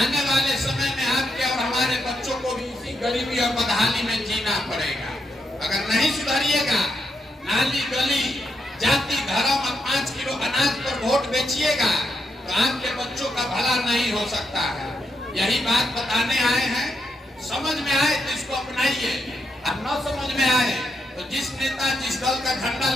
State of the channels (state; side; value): normal; both; correlation 0.82